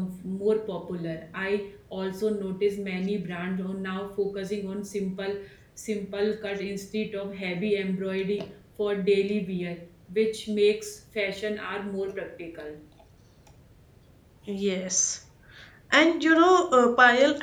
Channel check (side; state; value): both; identical; correlation 1.00